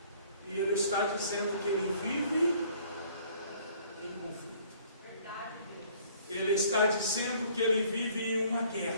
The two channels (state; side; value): inverted; both; correlation -0.57